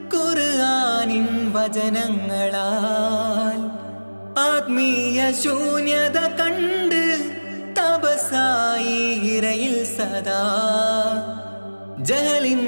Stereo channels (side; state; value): both; inverted; correlation -1.00